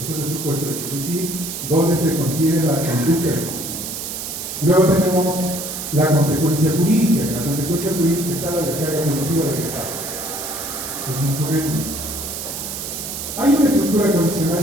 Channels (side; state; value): right; noise; hiss, 6 dB below the sound